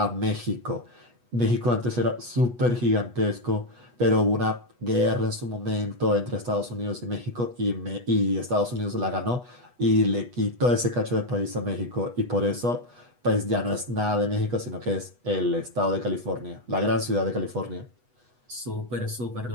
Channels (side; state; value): left; late; 8.2 ms